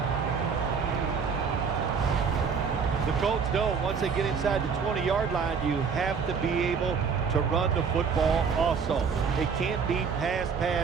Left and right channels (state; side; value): quieter; left; 6.0 dB